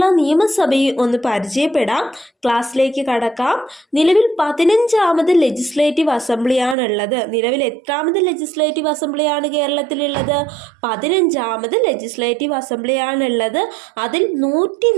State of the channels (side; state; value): left; drops out; at 6.8 s